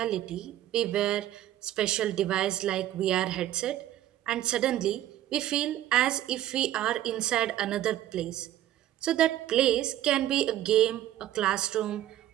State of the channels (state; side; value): quieter; left; 13.0 dB